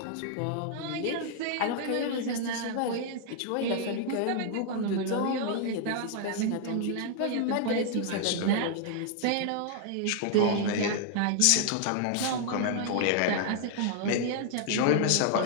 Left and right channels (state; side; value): different; both; correlation 0.00